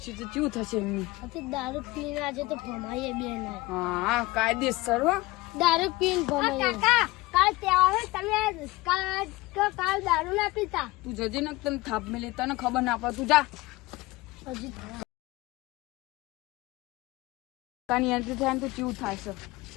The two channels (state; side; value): quieter; right; 20.6 dB